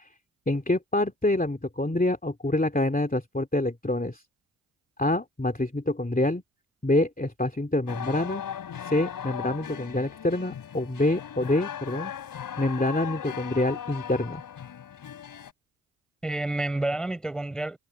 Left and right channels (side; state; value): both; normal; correlation 0.57